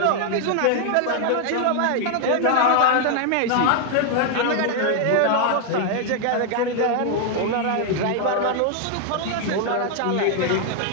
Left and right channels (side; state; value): both; different; correlation 0.00